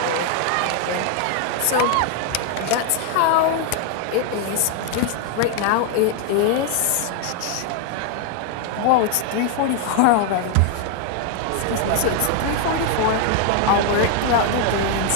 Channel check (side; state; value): both; different; correlation 0.00